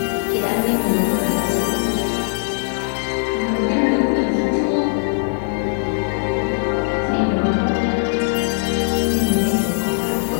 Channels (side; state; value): right; silent; digital silence